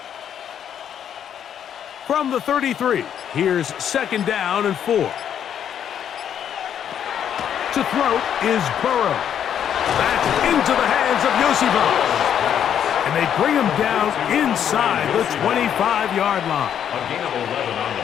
From the 33, here's 2nd down and 4. To throw is Burrow. That's into the hands of Yosivas. And they bring him down inside the 25-yard line.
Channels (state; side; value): quieter; right; 9.2 dB